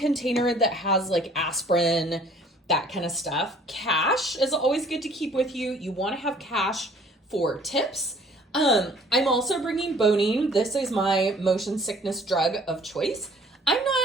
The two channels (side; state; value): both; normal; correlation 0.55